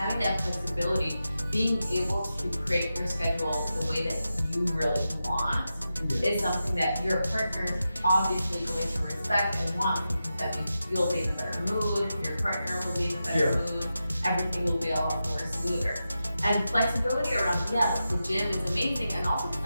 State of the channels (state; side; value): inverted; both; correlation -0.90